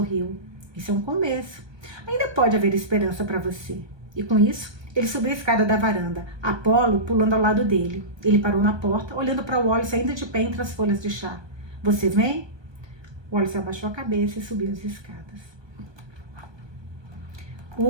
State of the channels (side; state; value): left; late; 1.2 ms